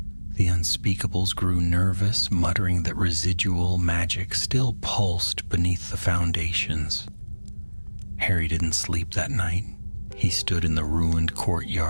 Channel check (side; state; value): both; inverted; correlation -1.00